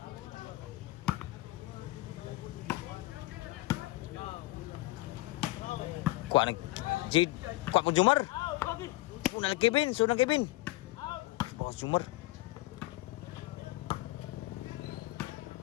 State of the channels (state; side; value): quieter; right; 19.7 dB